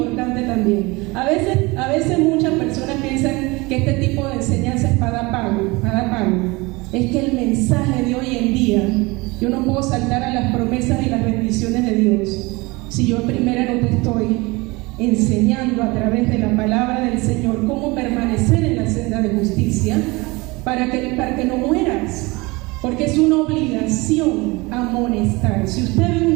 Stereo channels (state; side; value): quieter; left; 24.1 dB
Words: también. A veces muchas personas piensan que este tipo de enseñanza es para dar pago. Es que el mensaje de hoy en día, yo no puedo saltar a las promesas y las bendiciones de Dios si yo primero no te estoy enseñando a través de la palabra del Señor cómo permanecer en la senda de justicia para que no mueras, porque es una obligación amonestar. Si usted ve un